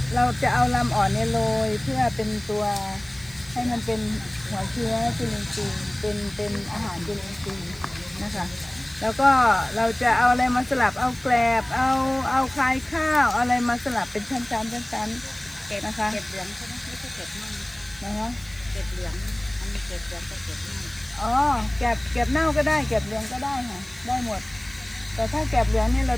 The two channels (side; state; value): right; noise; hiss, 22 dB below the sound